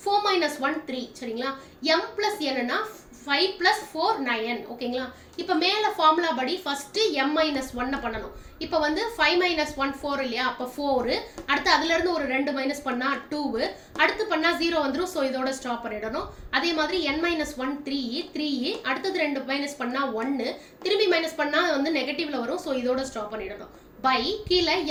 4 minus 1 3, சரிங்களா? m plus n னா 5 plus 4 9, ஓகேங்களா? இப்போ மேல ஃபார்முலா படி ஃபர்ஸ்ட் m minus 1 பண்ணணும். இப்போ வந்து 5 minus 1 4 இல்லையா, அப்ப 4, அடுத்து அதுல இருந்து ஒரு 2 மைனஸ் பண்ணா 2, அடுத்து பண்ணா 0 வந்துரும். ஸோ இதோட ஸ்டாப் பண்ணிடணும். அதே மாதிரி n minus 1 3, அடுத்தது 2 மைனஸ் பண்ணா 1, திரும்பி மைனஸ் பண்ணா வந்து நெகட்டிவ்ல வரும். ஸோ இதோட ஸ்டாப் பண்ணிடணும். பை கீழே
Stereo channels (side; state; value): both; identical; correlation 1.00